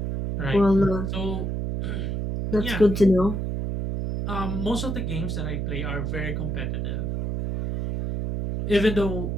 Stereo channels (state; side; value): noise; right; hum, 2 dB below the sound